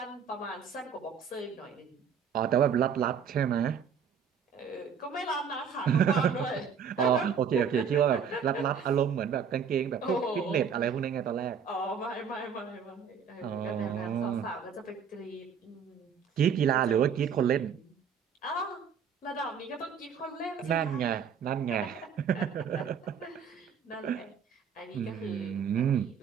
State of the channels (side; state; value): left; quieter; 7.0 dB